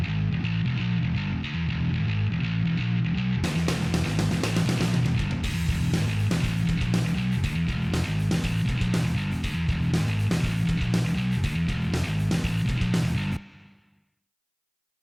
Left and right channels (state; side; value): identical; both; correlation 1.00